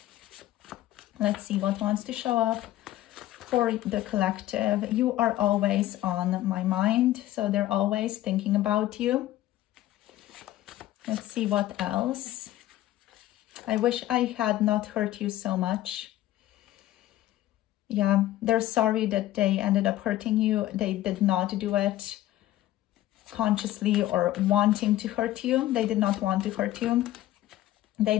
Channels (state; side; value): quieter; right; 14.6 dB